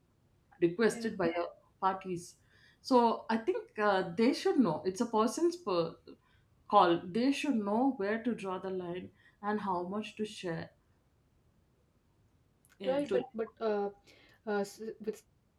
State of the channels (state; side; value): identical; both; correlation 1.00